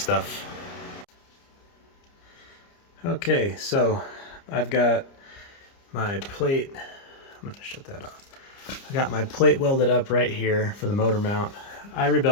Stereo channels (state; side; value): late; right; 30 ms